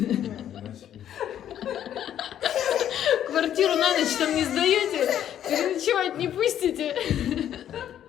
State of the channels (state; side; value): quieter; right; 10.5 dB